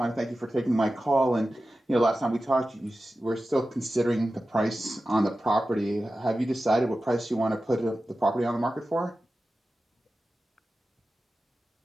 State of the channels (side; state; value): both; normal; correlation 0.94